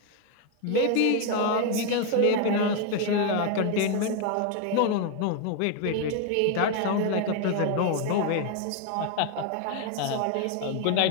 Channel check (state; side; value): different; both; correlation 0.01